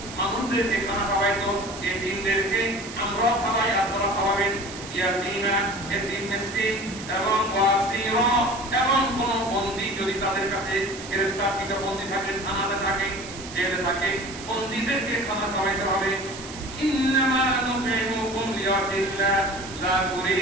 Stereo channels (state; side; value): noise; right; hiss, 13 dB below the sound